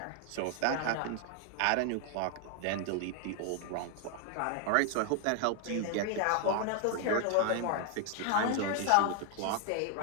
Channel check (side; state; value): both; different; correlation 0.00